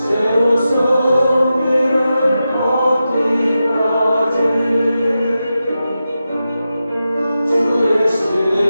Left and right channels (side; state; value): both; inverted; correlation -0.91